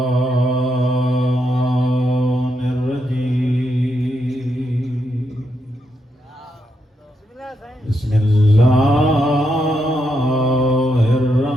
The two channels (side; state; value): both; normal; correlation 0.81